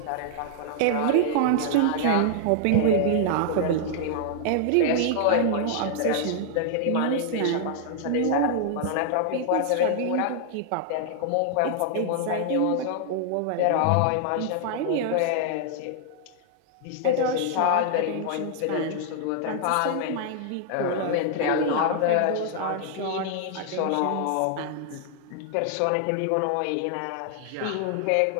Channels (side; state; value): both; different; correlation -0.01